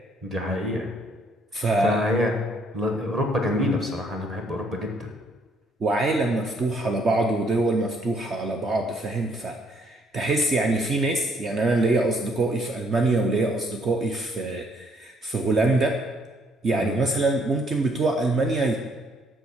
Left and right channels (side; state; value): both; normal; correlation 0.67